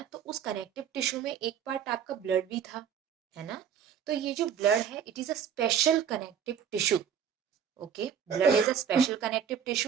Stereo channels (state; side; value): quieter; left; 8.0 dB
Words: तो उस कनेक्टिव टिश्यू में एक पार्ट आपका ब्लड भी था, है ना। तो ये जो ब्लड है, it is a special connective tissue. Okay, blood is a special connective